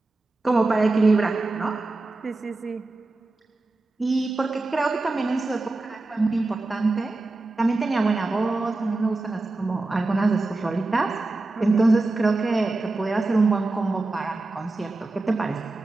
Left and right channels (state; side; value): quieter; left; 3.2 dB